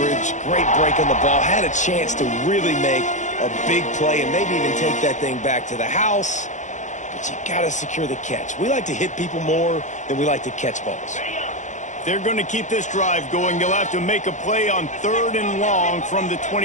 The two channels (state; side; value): late; right; 0.35 ms